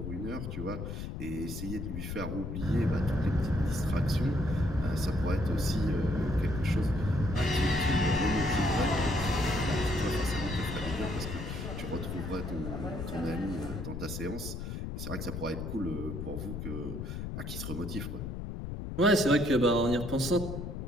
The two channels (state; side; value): noise; left; rumble, 5 dB below the sound